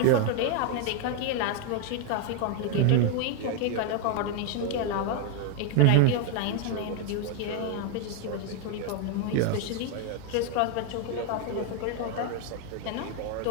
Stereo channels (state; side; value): different; both; correlation 0.00